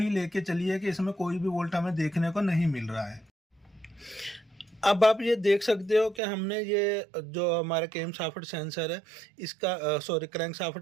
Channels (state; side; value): drops out; left; at 6.2 s